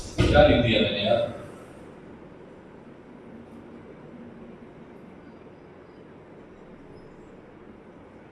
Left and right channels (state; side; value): identical; both; correlation 1.00